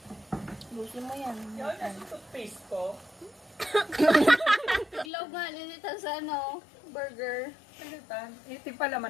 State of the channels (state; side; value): drops out; right; at 5.1 s